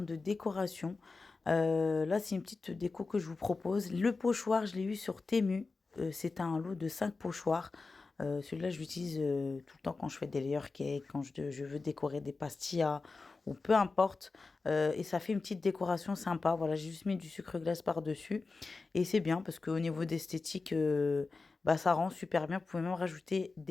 de décoration, là c'est une petite déco que je vous propose. Le pochoir, je l'ai eu sur Temu. C'est un lot de 5 pochoirs. Celui-là, je l'utilise tout le temps quand je fais des layer cakes, quand je veux décorer des pastillas ou peu importe. Et ça fait une petite décoration sympa. Voilà, j'ai juste mis du sucre glace par-dessus. Et c'est bien parce qu'au niveau d'esthétique, bah, ça rend super bien. Vous pouvez même rajouter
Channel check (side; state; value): right; quieter; 4.0 dB